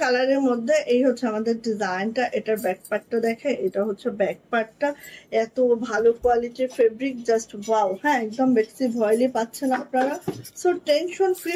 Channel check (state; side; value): identical; both; correlation 1.00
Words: কালারের মধ্যে এই হচ্ছে আমাদের ডিজাইনটা। এটার ব্যাক পার্টটা দেখে, এটা হচ্ছে ব্যাক পার্টটা, এত ভালো কোয়ালিটির ফেব্রিক, জাস্ট ওয়াও। হ্যাঁ, একদম বেক্সি ভয়েলি পাচ্ছেন আপনারা। সো টেনশন ফ্রি